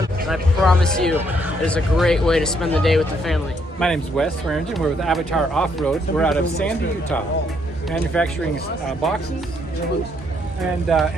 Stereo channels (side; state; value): both; normal; correlation 0.71